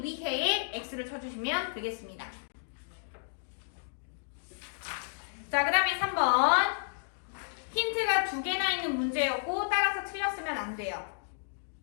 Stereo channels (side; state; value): right; silent; digital silence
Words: 위해에 X를 쳐주시면 되겠습니다. 자, 그 다음에 3번. 힌트가 2개나 있는 문제였고 따라서 틀렸으면 안 돼요.